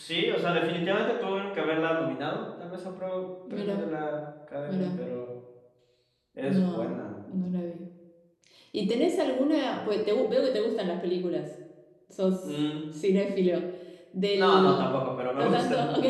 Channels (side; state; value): both; identical; correlation 1.00